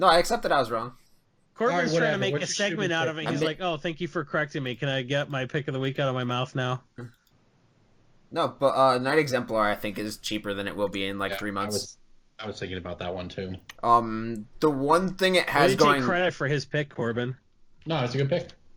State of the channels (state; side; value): identical; both; correlation 1.00